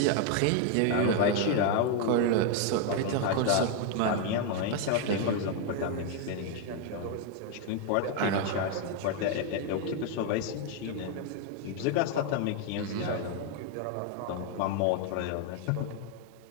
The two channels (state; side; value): different; both; correlation 0.00